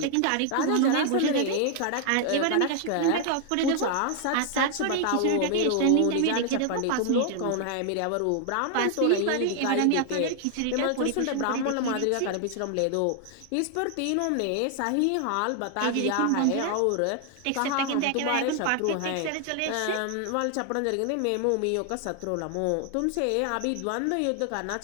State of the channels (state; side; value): different; both; correlation 0.00